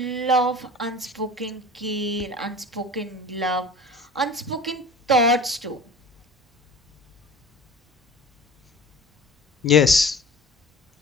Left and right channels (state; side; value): normal; both; correlation 0.41